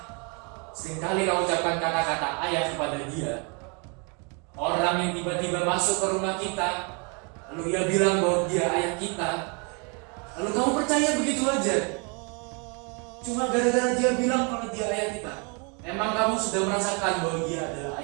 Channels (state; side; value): quieter; left; 34.5 dB